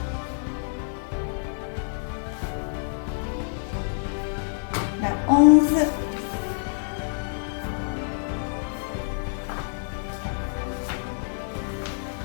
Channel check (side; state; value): right; silent; digital silence